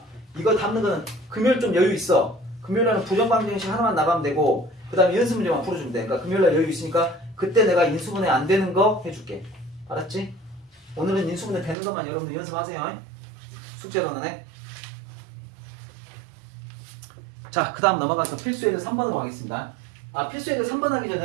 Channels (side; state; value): left; drops out; at 11.8 s